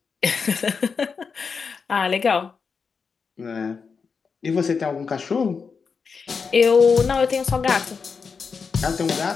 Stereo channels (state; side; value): quieter; right; 5.5 dB